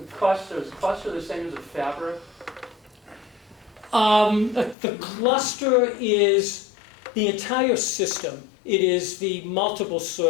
Cluster the same as a fabric? The cluster is the entire system. It is the multiple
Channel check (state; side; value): drops out; right; at 4.8 s